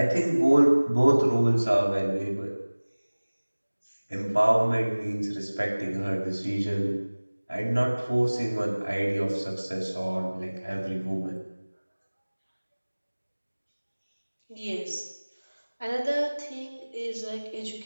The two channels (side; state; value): both; inverted; correlation -1.00